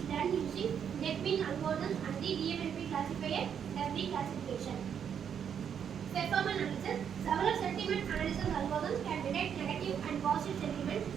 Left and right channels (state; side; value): quieter; left; 8.1 dB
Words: done using NetBean algorithms and the DMLP classifier does the classification. Performance analysis. Several sentiment analysis algorithms can detect negative and positive sentiment,